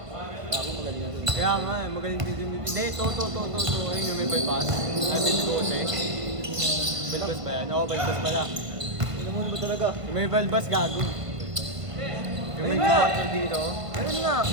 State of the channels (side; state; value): left; late; 1.5 ms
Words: Kaya nga, magaling din din. Hindi, to. Ayun yung may bypass. Sabi ni Jose. Bypass ba yan? Oo, bypass pala. Ano ba talaga? Yung may bypass gago. Yung may Ayun nga. bypass dito. Ayun nga!